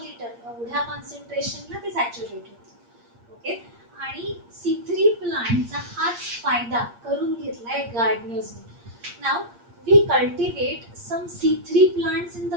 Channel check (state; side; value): late; left; 8.6 ms